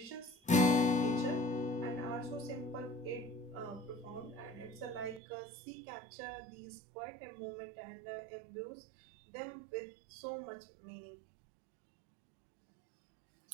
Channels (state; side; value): drops out; left; at 5.2 s